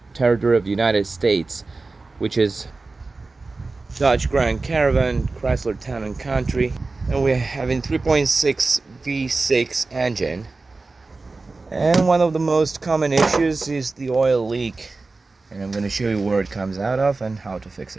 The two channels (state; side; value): quieter; left; 3.6 dB